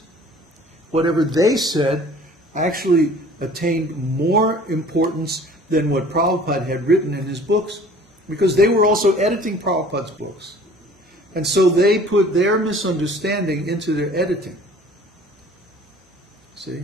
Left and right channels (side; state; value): both; normal; correlation 0.49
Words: whatever they said actually attained more importance than what Prabhupada had written in his books, because they were also editing Prabhupada's books. And so they put their misunderstanding into their editing. See?